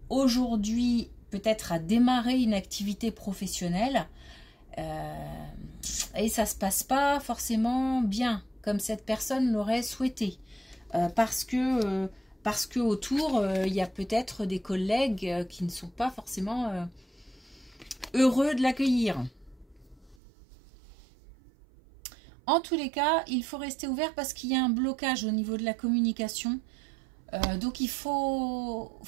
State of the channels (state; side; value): drops out; left; at 20.2 s